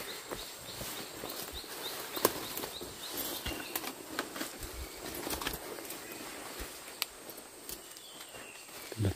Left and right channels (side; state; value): both; identical; correlation 1.00